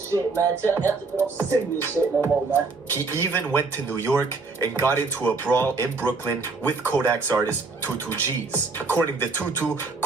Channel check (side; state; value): left; quieter; 4.0 dB